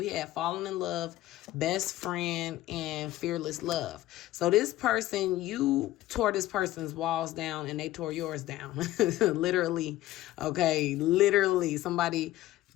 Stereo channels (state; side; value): quieter; right; 15.4 dB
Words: had falling in love, best friend, and fearless love. So this person, you tore this person's walls down and they tore yours down. Literally. Okay. Literally. Somebody